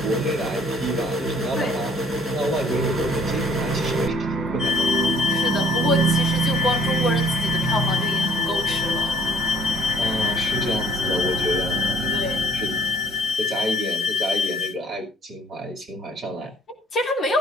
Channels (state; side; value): normal; both; correlation 0.58